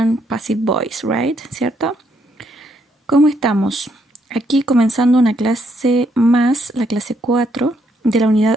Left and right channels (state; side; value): normal; both; correlation 0.74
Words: Passive Voice, right? ¿Cierto? ¿Cómo estamos? Aquí comenzando una clase más, la clase 4 de la